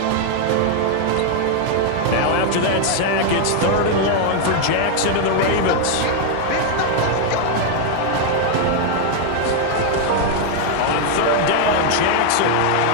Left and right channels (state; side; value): different; both; correlation 0.00